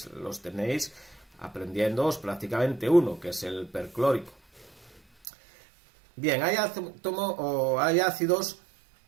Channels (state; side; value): drops out; left; at 5.2 s